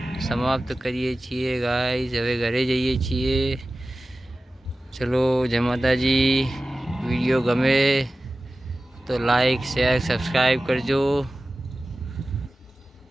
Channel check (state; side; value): normal; both; correlation 0.96